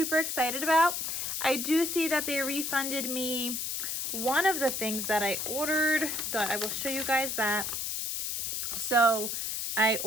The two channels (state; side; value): noise; left; hiss, 2 dB below the sound